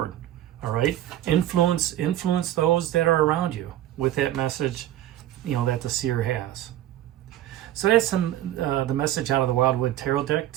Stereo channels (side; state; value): left; quieter; 13.3 dB